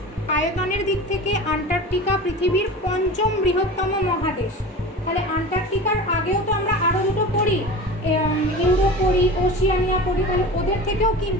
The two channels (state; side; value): normal; both; correlation 0.33